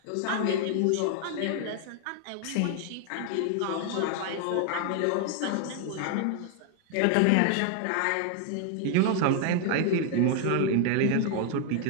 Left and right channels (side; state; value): both; different; correlation 0.00